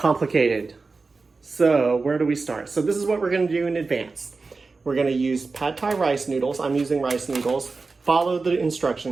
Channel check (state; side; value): quieter; left; 4.1 dB